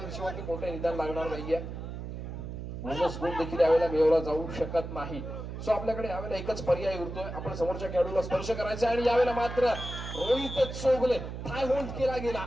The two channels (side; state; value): right; noise; hum, 7 dB below the sound